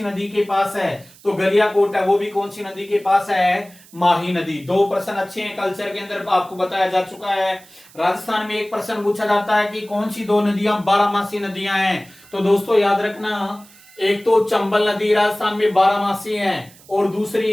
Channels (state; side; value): noise; right; hiss, 24 dB below the sound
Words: नदी के पास है? तो गलियाकोट है वो भी कौन सी नदी के पास है? माही नदी। 2 प्रश्न अच्छे हैं, कल्चर के अंदर आपको बताया जा चुका है। राजस्थान में एक प्रश्न पूछा जाता है कि कौन सी 2 नदियां 12मासी नदियां हैं? तो दोस्तों याद रखना, एक तो चंबल नदी राजस्थान में 12मासी है और